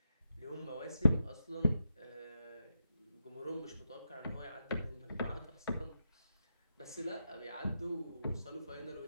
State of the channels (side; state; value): both; inverted; correlation -0.85